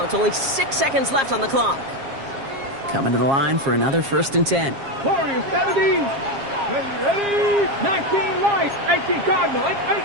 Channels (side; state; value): left; late; 7.4 ms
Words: Only 6 seconds left on the clock. Coming to the line for another 1st and 10. Warriors 70. Ready. 19 light. 18 Cardinal.